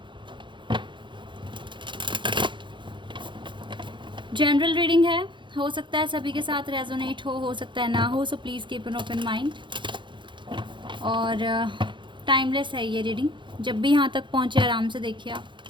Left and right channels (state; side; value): late; left; 0.23 ms